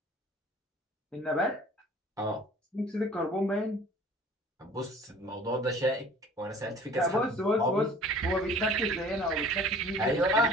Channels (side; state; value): both; normal; correlation 0.48